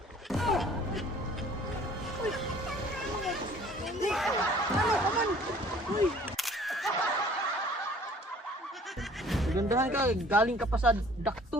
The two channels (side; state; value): both; normal; correlation 0.53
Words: Uy! Hindi! Ano ka man? Uy! Gandahan ka, galing ka pa sa